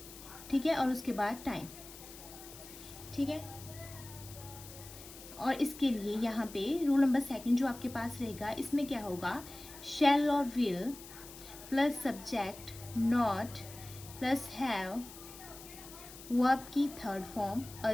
ठीक है, और उसके बाद टाइम, ठीक है। और इसके लिए यहाँ पे रूल नंबर 2 जो आपके पास रहेगा, इसमें क्या होगा, शैल और will plus subject not plus have, verb की थर्ड फॉर्म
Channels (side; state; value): left; noise; hiss, 16 dB below the sound